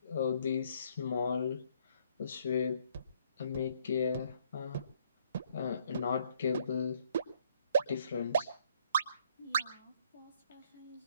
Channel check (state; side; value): inverted; both; correlation -0.66